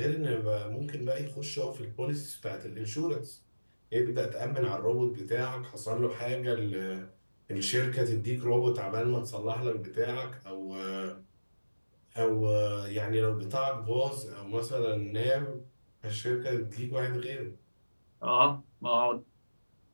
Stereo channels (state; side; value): inverted; both; correlation -1.00